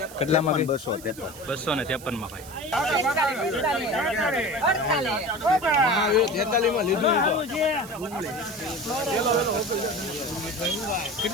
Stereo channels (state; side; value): noise; right; hiss, 17 dB below the sound